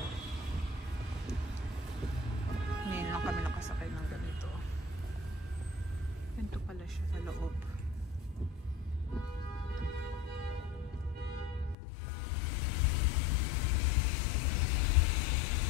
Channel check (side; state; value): right; drops out; at 11.8 s